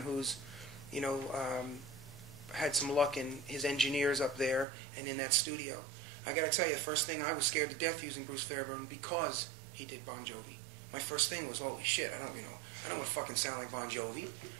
who's, had some luck in his engineers up there and in that studio. I got to tell you, the first thing, I was scared to death using Bruce Fairbairn because he did Bon Jovi. My first thing was, holy shit, I don't want to fucking sound like Bon Jovi.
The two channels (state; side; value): drops out; left; at 4.7 s